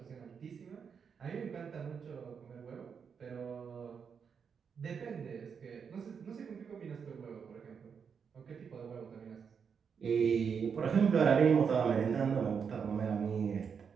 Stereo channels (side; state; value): left; quieter; 6.5 dB